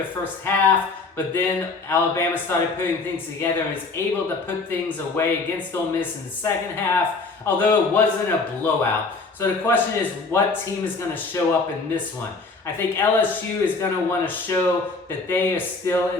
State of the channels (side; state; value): right; quieter; 3.9 dB